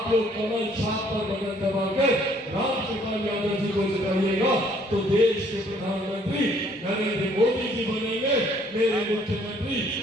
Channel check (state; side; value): normal; both; correlation 0.62